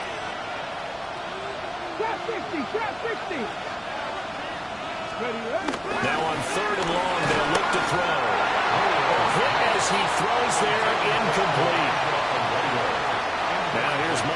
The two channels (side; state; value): both; identical; correlation 1.00